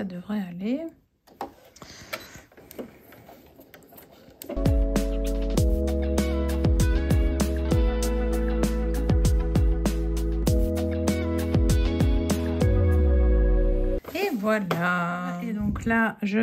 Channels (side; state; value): both; identical; correlation 1.00